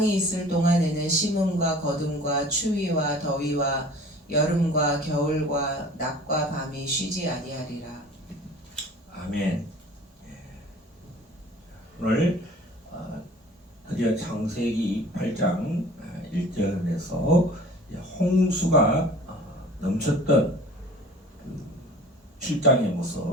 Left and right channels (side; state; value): both; normal; correlation 0.45